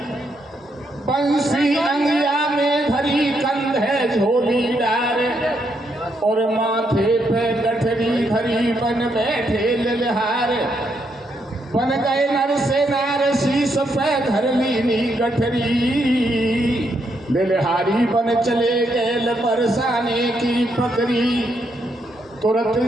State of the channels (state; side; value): normal; both; correlation 0.77